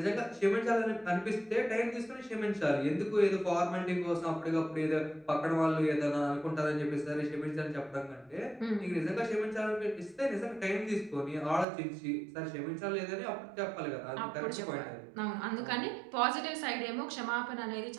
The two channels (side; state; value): left; drops out; at 11.7 s